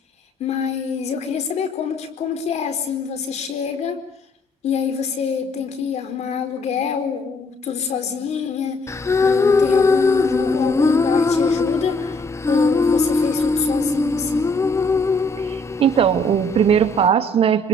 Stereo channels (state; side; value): normal; both; correlation 0.64